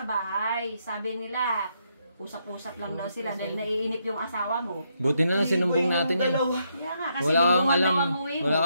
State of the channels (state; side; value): inverted; both; correlation -0.77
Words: bahay. Sabi nila, usap-usap lang daw sila dahil naiinip yung asawa mo. Buti na lang sinumbong natin eh. Kaya nga, kasi Wala kang lingguhan alam. daw ang uwi mo. Wala